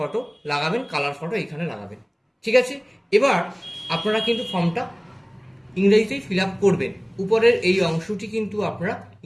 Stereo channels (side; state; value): both; identical; correlation 1.00